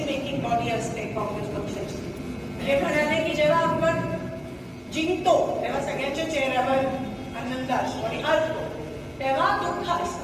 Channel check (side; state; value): both; identical; correlation 1.00